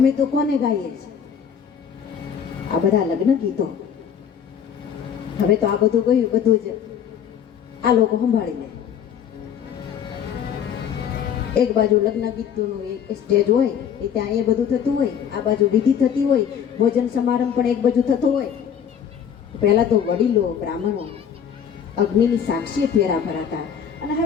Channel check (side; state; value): right; quieter; 8.2 dB